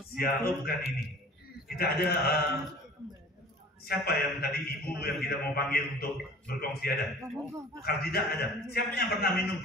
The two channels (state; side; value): normal; both; correlation 0.45